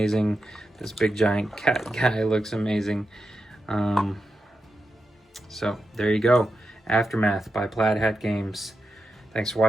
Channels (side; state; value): both; normal; correlation 0.88